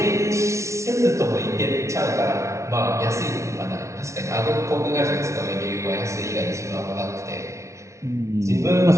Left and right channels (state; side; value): late; left; 0.14 ms